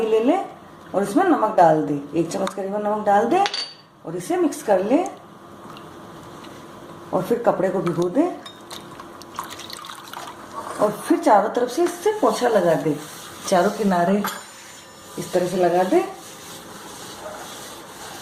ले ले और इसमें नमक डाल दे, 1 चम्मच करीबन नमक डाल दे और इसे मिक्स कर ले और फिर कपड़े को भिगो दे और फिर चारों तरफ से इससे पोंछा लगा दे, चारों किनारे इस तरह से लगा दे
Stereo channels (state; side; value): identical; both; correlation 1.00